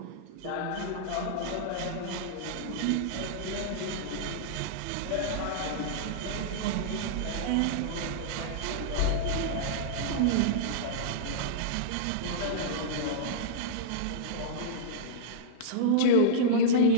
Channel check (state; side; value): different; both; correlation -0.03